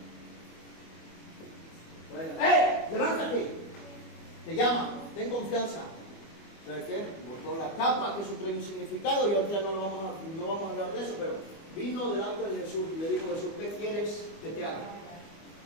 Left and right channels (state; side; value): late; right; 25 ms